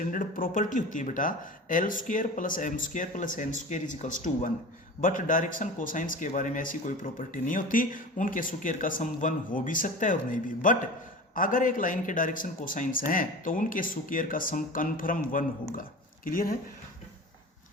प्रॉपर्टी होती है बेटा, l square plus m square plus n square is equals to 1। But direction cosines के बारे में ऐसी कोई प्रॉपर्टी नहीं होती, उनके स्क्वायर का सम 1 हो भी सकता है और नहीं भी। बट अगर एक लाइन के डायरेक्शन कोसाइंस हैं तो उनके स्क्वायर का सम कन्फर्म 1 होगा। क्लियर है।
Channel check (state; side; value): normal; both; correlation 0.34